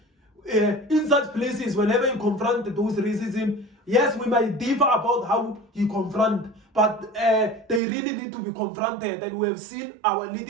In such places, whenever you confront those racism, yes, we might differ about how you confront, but they really need to be confronted. And we have seen our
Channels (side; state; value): left; drops out; at 7.8 s